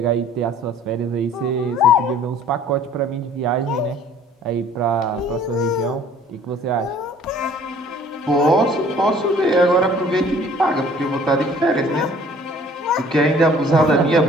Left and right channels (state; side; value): normal; both; correlation 0.54